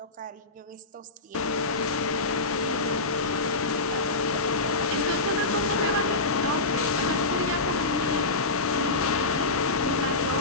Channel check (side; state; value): right; quieter; 3.4 dB